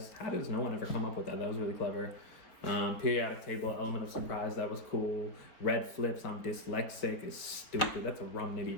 How does no one ever come up with that? That was really clever. Periodic table, element of surprise, that was cool. Red flips, I'm dyslexic, is stupid. That's a rum nitty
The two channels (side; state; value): right; late; 4.3 ms